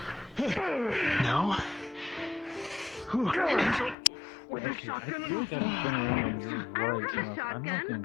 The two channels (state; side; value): drops out; right; at 4.0 s